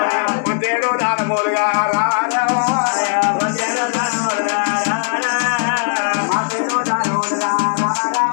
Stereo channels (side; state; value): right; silent; 68 dB below the other